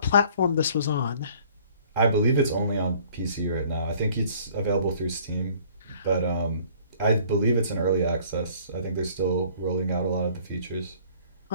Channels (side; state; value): both; inverted; correlation -0.55